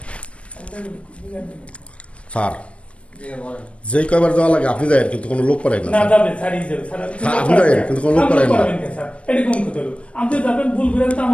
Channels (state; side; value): late; right; 0.061 ms